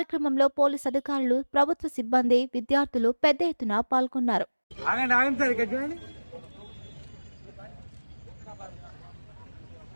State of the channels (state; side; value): inverted; both; correlation -1.00